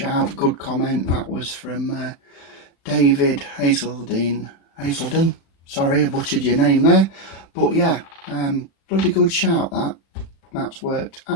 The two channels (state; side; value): late; right; 36 ms